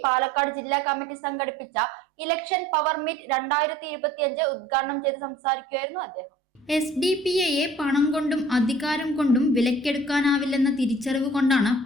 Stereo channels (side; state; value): both; normal; correlation 0.51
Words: Palakkad ജില്ലാ committee സംഘടിപ്പിച്ച ഇലക്ഷൻ പവർ മീറ്റ് 2025 ഉദ്ഘാടനം ചെയ്ത് സംസാരിക്കുകയായിരുന്നു അദ്ദേഹം. SDPIയെ പണം കൊണ്ടും അധികാരം കൊണ്ടും വിലക്കെടുക്കാനാവില്ലെന്ന തിരിച്ചറിവ് കൊണ്ടാണ്